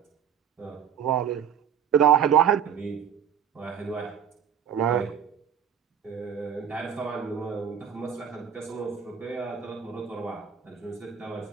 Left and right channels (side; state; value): left; quieter; 8.3 dB